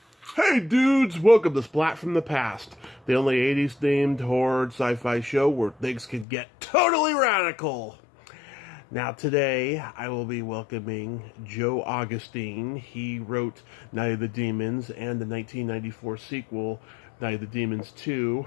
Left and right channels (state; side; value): drops out; right; at 6.2 s